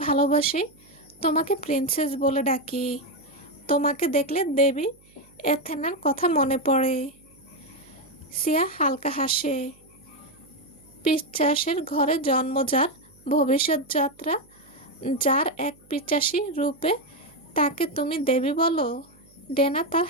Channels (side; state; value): right; noise; hum, 29 dB below the sound